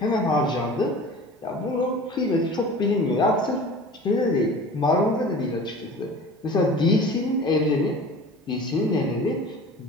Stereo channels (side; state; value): both; normal; correlation 0.40